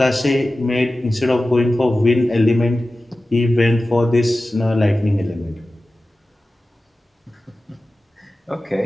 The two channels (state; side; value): normal; both; correlation 0.95